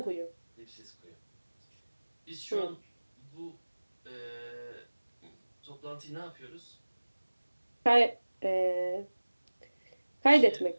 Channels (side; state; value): both; inverted; correlation -1.00